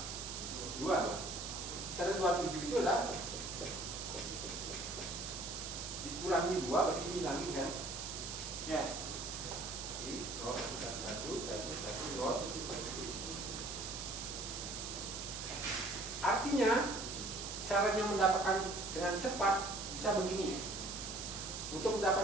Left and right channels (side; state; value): right; noise; hiss, 6 dB below the sound